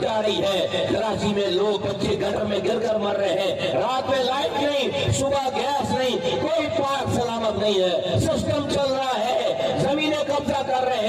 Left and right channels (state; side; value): identical; both; correlation 1.00